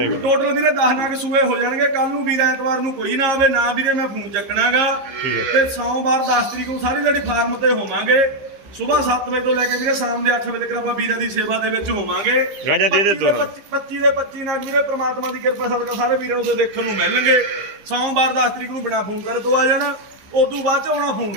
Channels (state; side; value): late; left; 15 ms